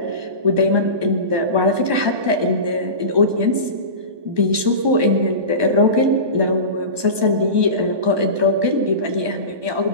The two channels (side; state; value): left; late; 1.2 ms